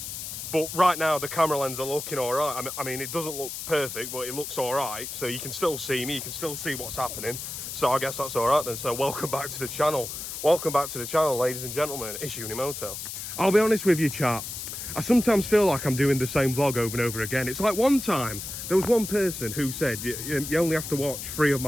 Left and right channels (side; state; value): left; noise; hiss, 7 dB below the sound